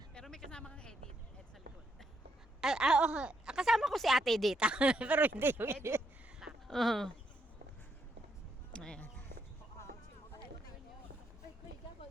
Pero may kasama kang edit. Ed sa likod. Oh, kasama ko si ate dito. Pero hindi yung edit. Ayan.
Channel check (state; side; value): normal; both; correlation 0.77